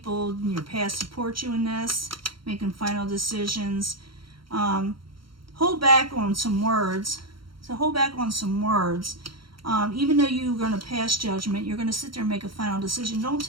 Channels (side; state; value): left; late; 0.73 ms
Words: in your past support you in this, making final decisions. Hold back on some words. So hold back on some words. Even though you're going to pass judgment, you're going to sit there and make a final decision. Don't